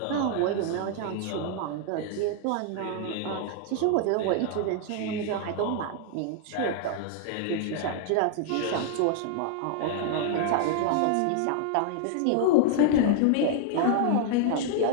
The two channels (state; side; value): different; both; correlation 0.00